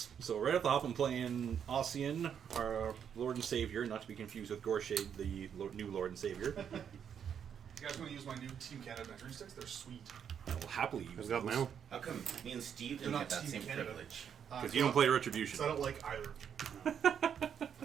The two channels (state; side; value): quieter; left; 8.1 dB